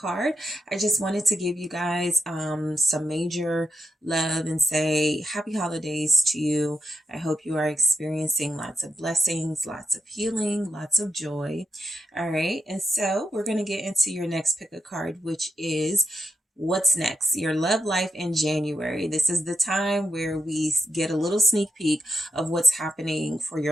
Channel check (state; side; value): normal; both; correlation 0.85